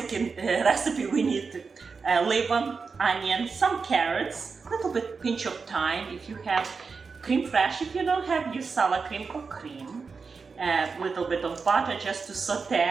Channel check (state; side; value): quieter; left; 4.9 dB